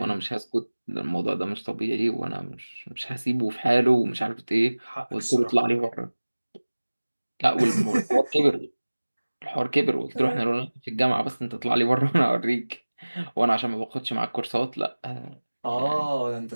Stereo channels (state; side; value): inverted; both; correlation -1.00